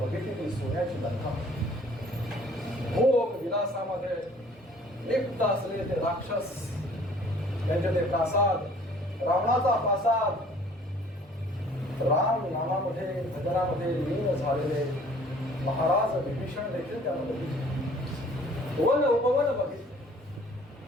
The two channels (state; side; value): normal; both; correlation 0.54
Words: बघितली ती सोन्याची लंका. भोग विलासामध्ये लिप्त असलेले ते राक्षस, त्यांचे ते प्रासाद, रावणाचा प्रासाद, राम नामामध्ये भजनामध्ये लीन झालेले महाराज विभीषण देखील त्यानं बघितले. वन उपवन बघितले